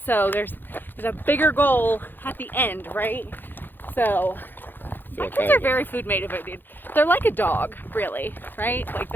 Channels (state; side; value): late; right; 0.094 ms